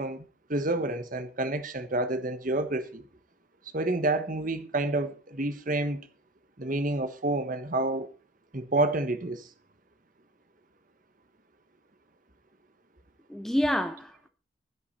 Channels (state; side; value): normal; both; correlation 0.37